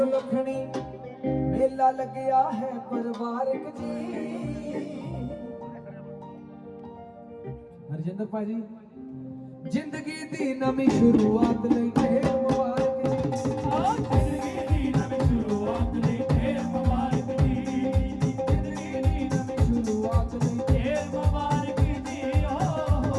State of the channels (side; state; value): both; identical; correlation 1.00